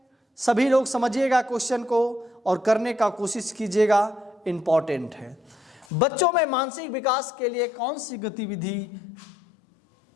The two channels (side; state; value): right; drops out; at 5.9 s